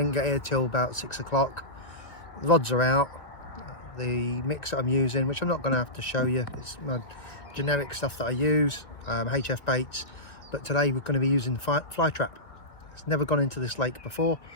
get here till about 6 o'clock. Rods are out. The mix that I'm using, which I'm not going to have to show you, it's my generic stuff that I use, HF baits, but today we're going to be using fly trap. It's never gone into this lake before,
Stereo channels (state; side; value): late; right; 2.1 ms